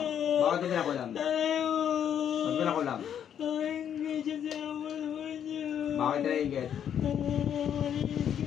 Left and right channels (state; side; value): quieter; right; 9.1 dB